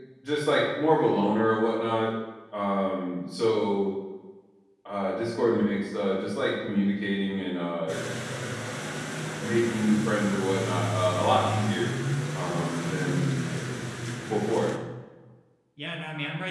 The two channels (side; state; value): both; identical; correlation 1.00